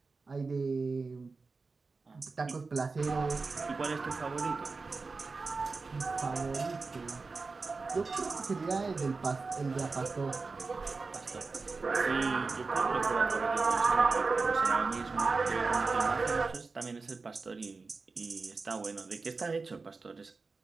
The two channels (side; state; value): left; quieter; 4.1 dB